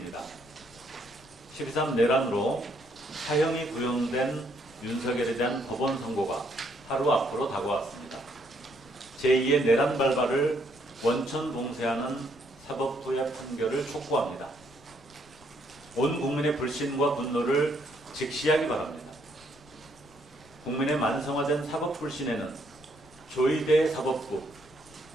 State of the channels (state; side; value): noise; left; rumble, 26 dB below the sound